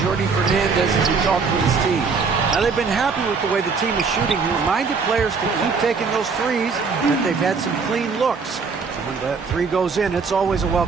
Jordi Fernandez as he talked with his team. Now, they've been happy with the way the team is shooting. He reminded players to keep taking those threes, that they've had some clean looks. When that 3 goes in, it's always a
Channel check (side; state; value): left; quieter; 5.0 dB